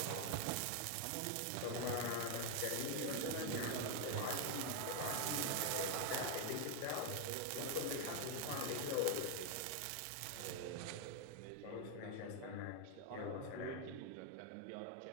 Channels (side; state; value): both; different; correlation 0.00